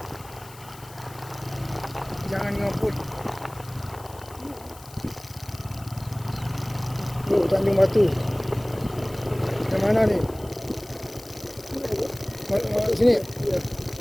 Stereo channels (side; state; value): left; noise; hiss, 20 dB below the sound